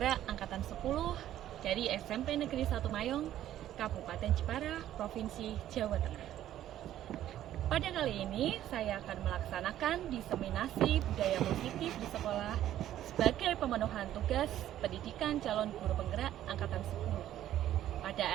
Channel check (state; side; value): quieter; left; 12.3 dB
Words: angkatan 10 dari SMP Negeri 1 Mayong, Kabupaten Jepara, Provinsi Jawa Tengah. Pada kali ini saya akan melaksanakan diseminasi budaya positif di sekolah sebagai pemenuhan tugas pendidikan calon guru penggerak angkatan 10 pada